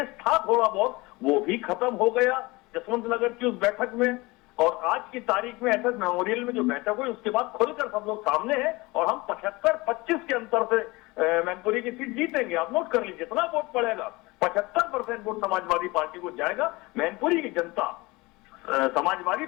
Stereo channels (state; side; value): quieter; right; 23.0 dB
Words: था थोड़ा बहुत, वो भी खत्म हो गया जसवंत नगर की उस बैठक में। और आज की तारीख में एसएस मेमोरियल में जो बैठक हुई, उसके बाद खुलकर सब लोग सामने हैं, और हम 75-25 के अंतर से मैनपुरी की सीट जीतेंगे। आप नोट कर लीजिए, जितना वोट पड़ेगा 75% वोट समाजवादी पार्टी को जाएगा। मैनपुरी की जनता समाजवादी